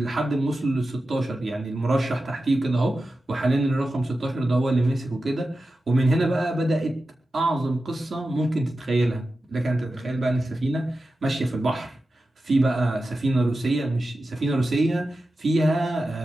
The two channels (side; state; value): both; normal; correlation 0.92